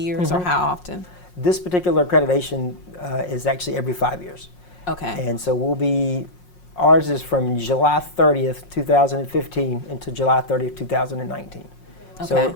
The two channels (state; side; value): late; right; 5.5 ms